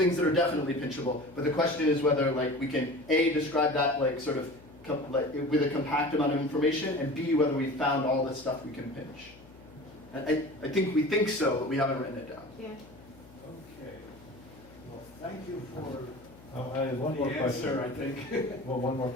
that are definitely pinchable, but the question is whether we can A, describe that sort of with a compact amount of information, and B, whether we found all the stuff we can pinch. And I think we think so, but we haven't written it down. Yeah. Okay. Well, thank you for I have one more the question. answer, I think. Well, one more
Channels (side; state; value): left; noise; hum, 23 dB below the sound